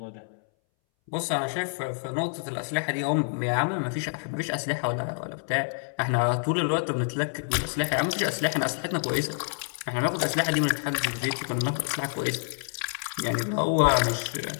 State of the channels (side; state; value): right; silent; 60 dB below the other